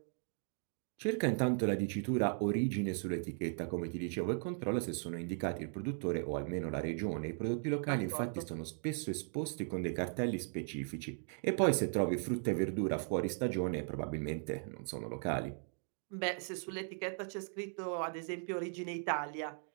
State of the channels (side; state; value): left; silent; 53 dB below the other